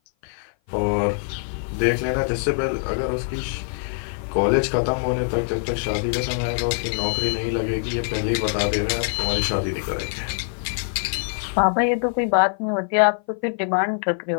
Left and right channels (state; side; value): silent; right; 56 dB below the other